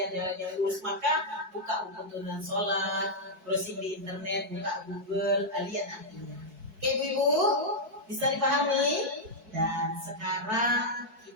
jalan yang lurus. Maka buka buku tuntunan sholat, browsing di internet, buka Google, lihat artinya. Oke ibu, bisa dipahami? Dan sekarang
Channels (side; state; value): left; late; 4.6 ms